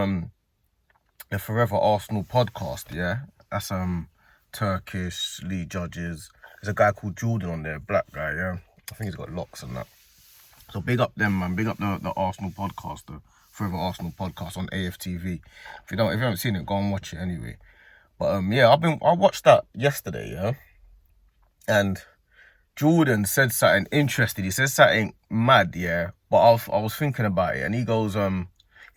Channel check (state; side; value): identical; both; correlation 1.00